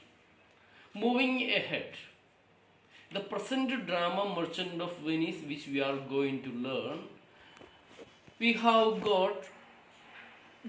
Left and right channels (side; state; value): both; identical; correlation 1.00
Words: Moving ahead, the present drama Merchant of Venice, which we are going to learn, we have got